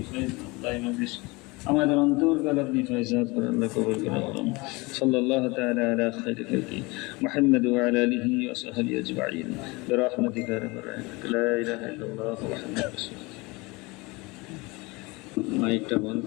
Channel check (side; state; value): right; quieter; 24.8 dB